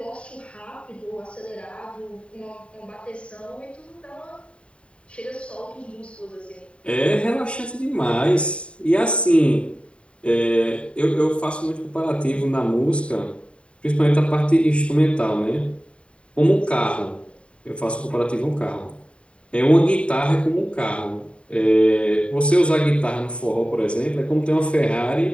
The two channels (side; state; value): right; late; 0.059 ms